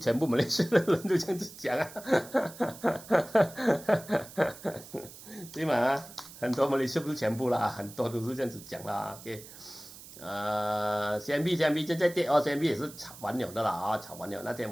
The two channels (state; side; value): noise; right; hiss, 17 dB below the sound